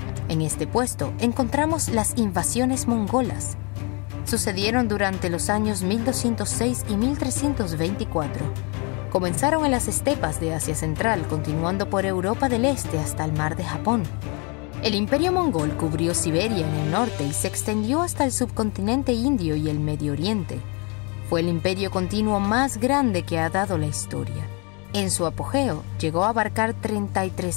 En este puesto encontramos las invasiones mongolas. Sucedieron durante los años 1206 y 1324. Comenzaron en las estepas de Asia Central, continuando por Europa del Este hasta el Mar de Japón. El imperio mongol cubrió Siberia en el norte y se extendió hasta el subcontinente indio y el Medio Oriente. Fue el imperio continuo más grande que ha dado la historia. En su apogeo, llegó a abarcar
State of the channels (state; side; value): quieter; right; 32.1 dB